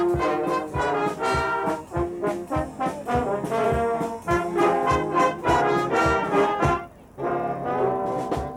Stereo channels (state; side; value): identical; both; correlation 1.00